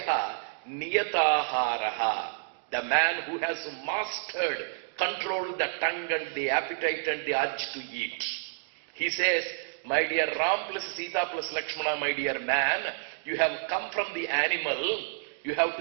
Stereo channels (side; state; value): left; silent; digital silence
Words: Niyataharaha. The man who has mastered, controlled the tongue and the appetite and the urge to eat. He says, my dear Ram plus Sita plus Lakshmana, my dear man, you have come from the animal, you have